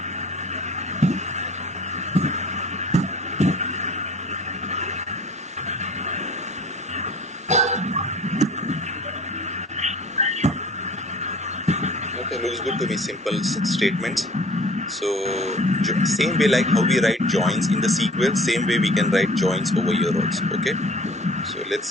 Looks good to me. Simple statements. So same way like how we write joins in the SQL, same way we can write joins over here also. Okay, so let's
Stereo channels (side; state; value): both; normal; correlation 0.49